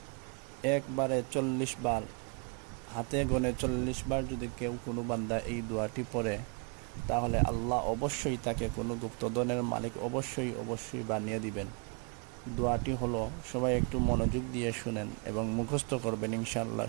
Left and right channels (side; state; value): left; quieter; 36.2 dB